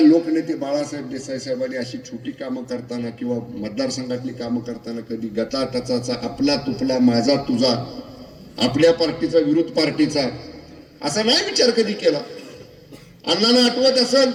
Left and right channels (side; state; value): both; identical; correlation 1.00